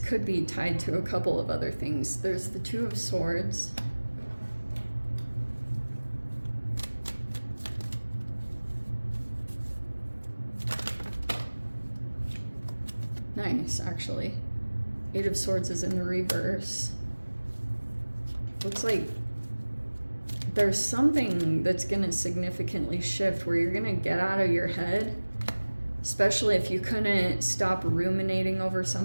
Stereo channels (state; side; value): inverted; both; correlation -1.00